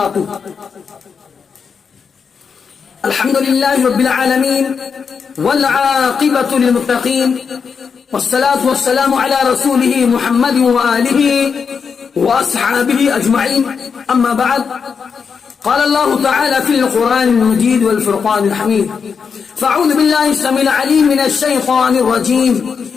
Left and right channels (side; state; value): right; quieter; 6.0 dB